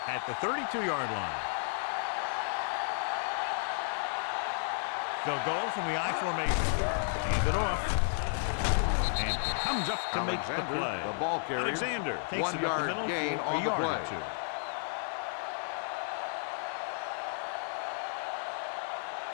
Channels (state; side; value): silent; right; digital silence